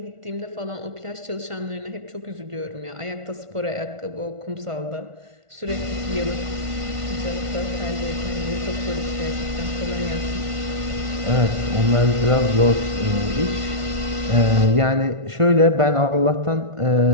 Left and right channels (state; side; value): late; left; 1.5 ms